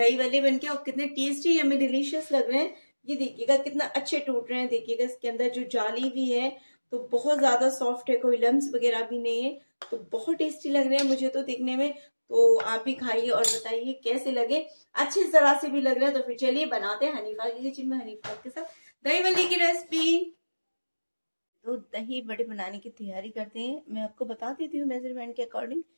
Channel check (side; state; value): both; inverted; correlation -1.00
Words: भल्ले बनके और कितने टेस्टी यम्मी डिलीशियस लग रहे हैं। ये देखिएगा कितना अच्छे टूट रहे हैं। देखिएगा इसके अंदर जो जाली भी है तो बहुत ज्यादा सॉफ्ट है, कोई लम्स वगैरह भी नहीं है। तो बहुत टेस्टी लग रहे हैं मुझे तो देखने में। तो आप भी खाइए और बताइए कैसे लगे। अच्छी तरह से भी लग रहे हैं। तो फिर चलिए बनाते हैं हनीफा की किचन में हनीफा के साथ दही भल्ले की रेसिपी। तो दही बड़े बनाने की तैयारी करते हैं। मैं आपको बता देती हूँ मेजरमेंट के अकॉर्डिंग।